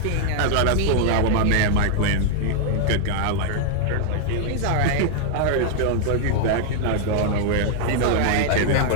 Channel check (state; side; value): different; both; correlation 0.00